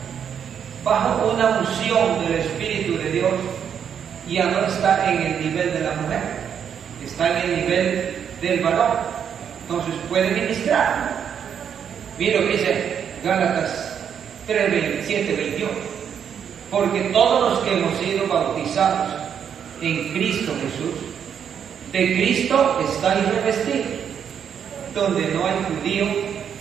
bajo una unción del Espíritu de Dios ya no está en el nivel de la mujer, está en el nivel del varón. Entonces puede ministrar. Mira lo que dice Gálatas 3, 27, 28. Porque todos los que hemos sido bautizados en Cristo Jesús, de Cristo estáis revestidos, donde no hay judío,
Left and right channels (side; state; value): left; quieter; 8.1 dB